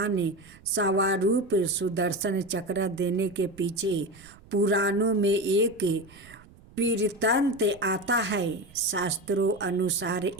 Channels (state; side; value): noise; right; rumble, 24 dB below the sound